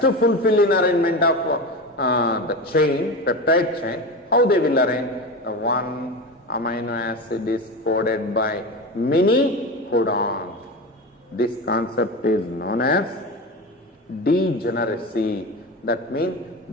fulfill in arrangement of the chain, peptide chain. How they will arrange? One amino acid is coded by many codons. This concept is known as degeneracy. That means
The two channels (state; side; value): normal; both; correlation 0.24